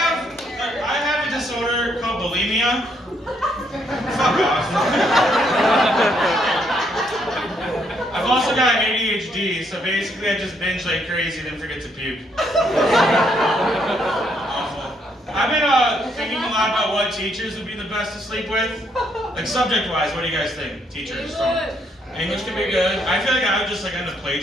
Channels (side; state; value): both; normal; correlation 0.72